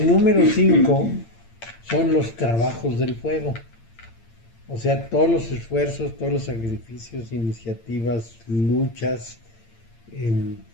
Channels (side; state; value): right; late; 8.8 ms